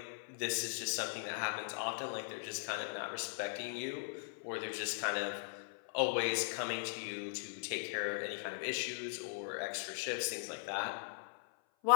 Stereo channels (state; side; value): silent; right; 51 dB below the other